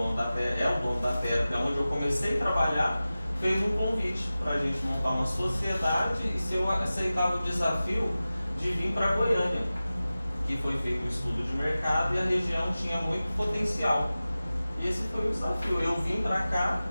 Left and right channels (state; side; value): inverted; both; correlation -0.96